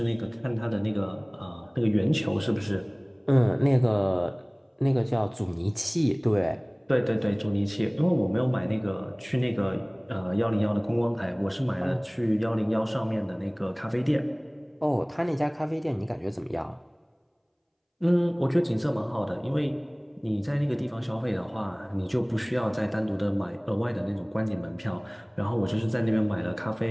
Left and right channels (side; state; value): both; identical; correlation 1.00